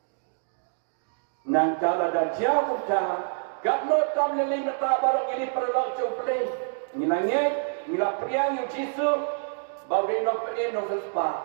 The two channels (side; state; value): left; silent; digital silence